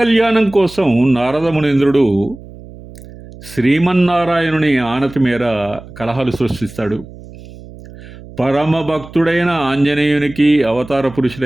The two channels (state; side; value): noise; right; hum, 18 dB below the sound